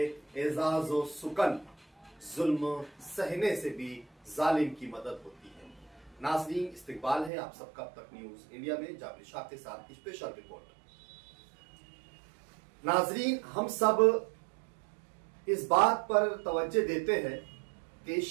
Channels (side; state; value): left; drops out; at 7.3 s